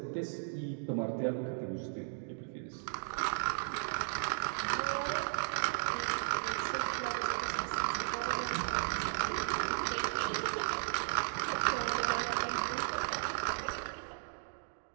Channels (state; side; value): silent; left; digital silence